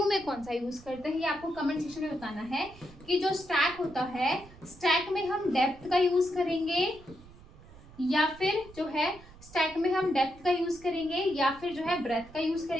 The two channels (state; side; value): noise; right; rumble, 21 dB below the sound